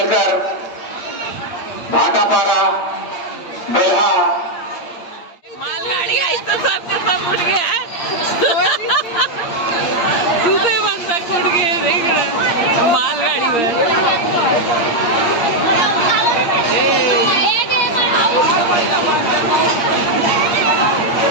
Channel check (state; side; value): late; right; 8.6 ms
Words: भाटापारा बेल्हा मालगाड़ी आई तो सब उठ गया है। दूसरे बंद तक उठ गए, देख रहे मालगाड़ी में।